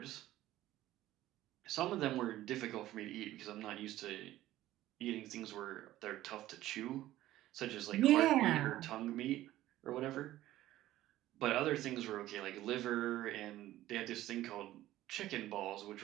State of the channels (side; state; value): left; quieter; 14.8 dB